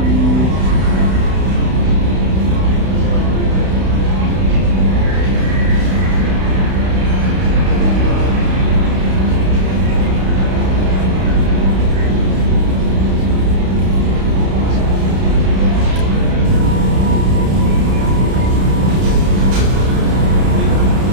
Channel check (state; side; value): late; left; 31 ms